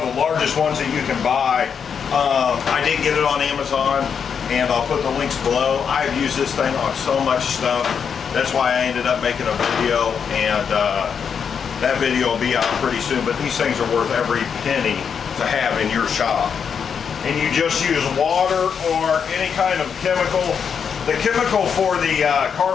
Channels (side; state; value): right; quieter; 6.9 dB